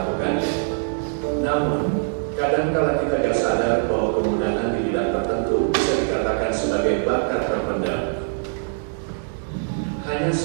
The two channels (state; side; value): silent; left; digital silence